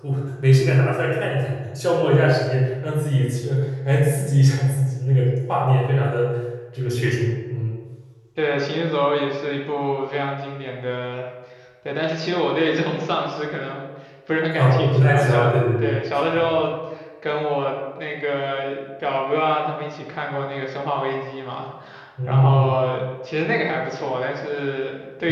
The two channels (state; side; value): identical; both; correlation 1.00